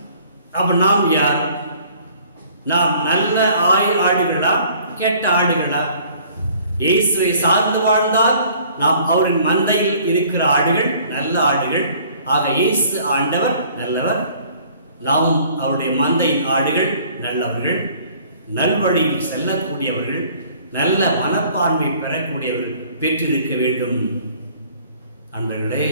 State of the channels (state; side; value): inverted; both; correlation -0.55